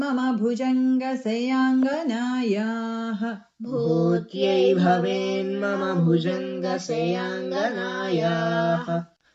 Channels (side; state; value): both; identical; correlation 1.00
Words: भुजङ्गशयाङ्गनायाः भूत्यै भवेन्मम भुजङ्गशयाङ्गनायाः